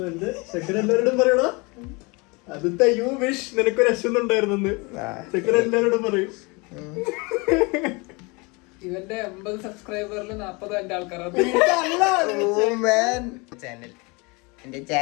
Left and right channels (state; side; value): quieter; right; 27.8 dB